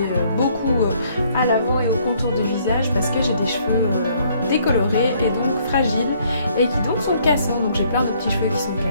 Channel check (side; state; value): both; inverted; correlation -0.65